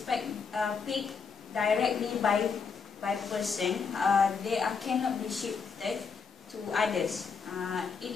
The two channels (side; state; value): right; quieter; 5.5 dB